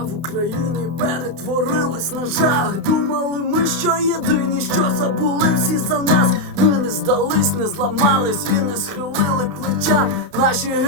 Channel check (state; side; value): late; left; 31 ms